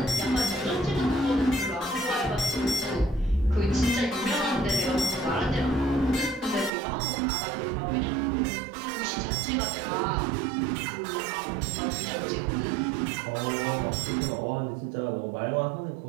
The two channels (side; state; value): left; drops out; at 6.7 s